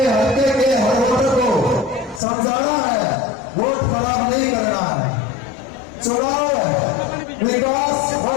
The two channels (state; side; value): drops out; right; at 2.2 s